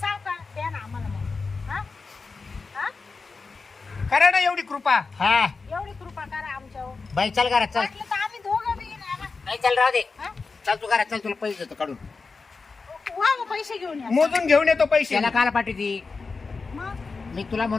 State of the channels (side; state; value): right; quieter; 4.4 dB